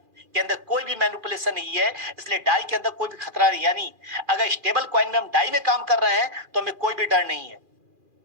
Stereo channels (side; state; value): left; late; 2.4 ms